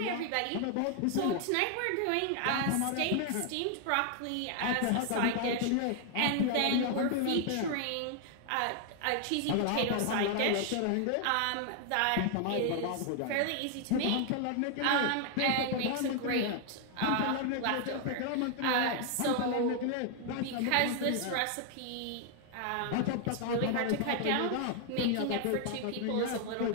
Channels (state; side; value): different; both; correlation 0.00